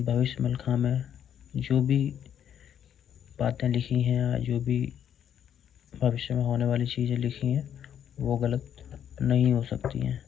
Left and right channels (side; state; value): right; quieter; 9.3 dB